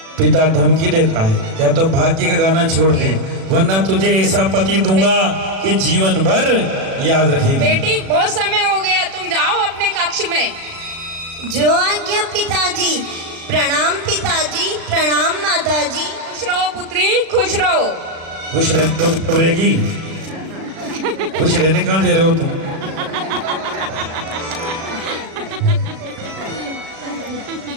पिता धमकी देता है, या तो भाग्य का गाना छोड़ दे, वरना तुझे ऐसा पति दूंगा कि जीवन भर याद रखेगी। बेटी, बहुत समय हो गया, तुम जाओ अपने कक्ष में। जो आज्ञा पिताजी। प्रणाम पिताजी, प्रणाम माताजी। खुश रहो पुत्री, खुश रहो। खुश रहने तो घबरेगी, खुश रहने कहाँ दे रहे हो तुम?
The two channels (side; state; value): left; late; 37 ms